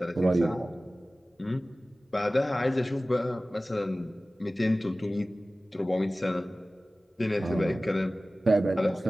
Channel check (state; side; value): normal; both; correlation 0.97